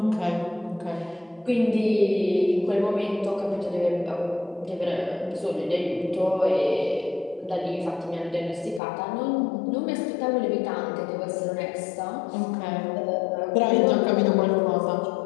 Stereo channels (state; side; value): drops out; right; at 8.8 s